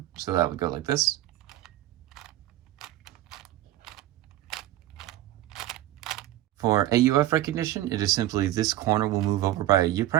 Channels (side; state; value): left; quieter; 14.8 dB